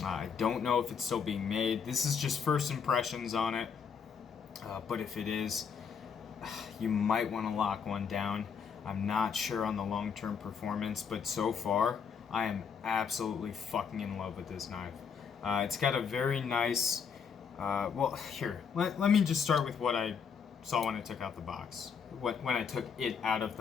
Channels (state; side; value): quieter; right; 6.6 dB